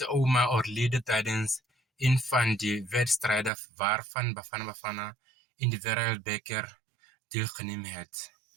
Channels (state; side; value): drops out; left; at 3.5 s